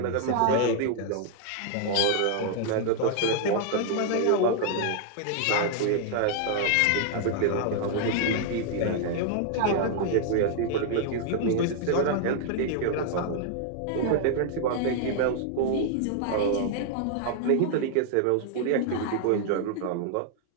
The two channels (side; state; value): both; different; correlation 0.00